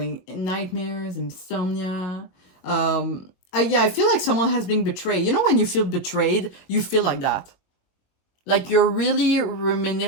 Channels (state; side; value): late; right; 22 ms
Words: nightmares, insomnia. Yeah, I feel like someone has been betrayed. You know when you feel betrayed, you feel like that. Like you're really